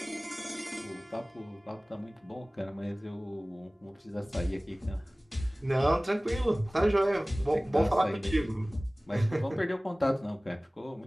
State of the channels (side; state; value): both; normal; correlation 0.98